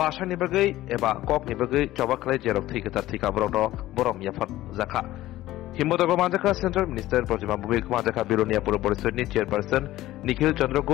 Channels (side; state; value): right; quieter; 15.6 dB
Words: ni bagai eba kok ni bagai coba klai jerok thika borom yafat zaka himboto manjaka Central Minister Projima Bubik manjaka Bilonia Purpurishot ni chairperson Nikhil Chandra